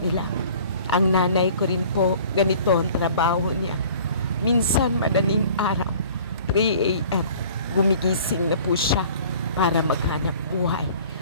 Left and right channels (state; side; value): inverted; both; correlation -0.49